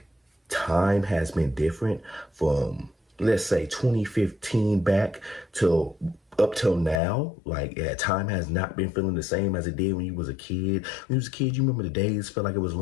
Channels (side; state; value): right; drops out; at 7.0 s